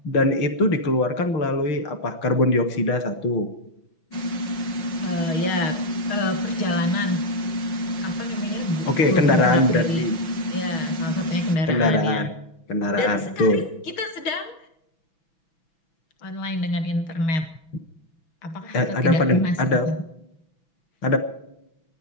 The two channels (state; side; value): late; right; 6.0 ms